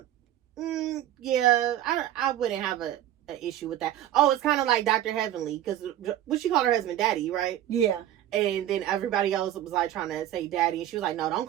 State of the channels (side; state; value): left; quieter; 12.5 dB